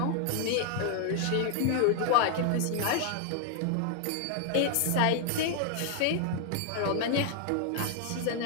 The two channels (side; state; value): both; different; correlation 0.00